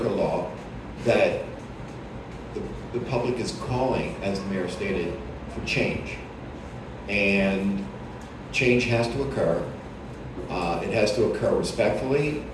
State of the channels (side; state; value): both; identical; correlation 1.00